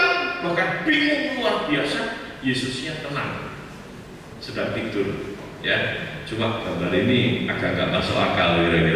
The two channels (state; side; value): identical; both; correlation 1.00